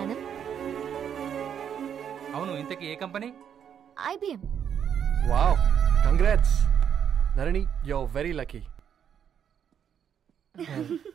annum. అవును, ఇంతకీ ఏ company? IBM. Wow, congrats Narani, you are very lucky.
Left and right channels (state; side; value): quieter; left; 8.5 dB